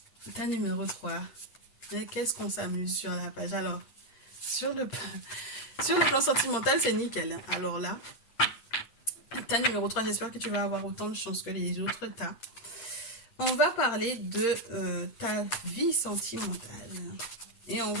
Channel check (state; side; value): late; right; 8.7 ms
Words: Ta numéro 3. Et qu'est-ce qu'on s'amuse sur la page? Alors, sur le plan sentimental, c'est nickel. Hein. Alors là, ta numéro 3, j'espère que tu vas avoir autant de chance que les autres tas. On va parler de ta vie sentimentale. Et on